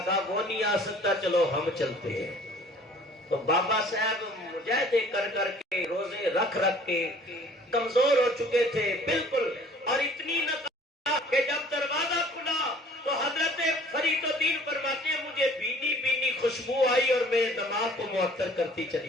کہا وہ نہیں آ سکتا, چلو ہم چلتے ہیں. تو بابا صاحب مجاہدے کر کر کے روزے رکھ کے کمزور ہو چکے تھے بالکل, اور اتنی نہ کہ جب دروازہ کھلا تو حضرت فرید الدین فرماتے ہیں مجھے بینی بینی خوشبو آئی اور میرے دماغ کو معطر کرتی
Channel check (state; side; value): normal; both; correlation 0.52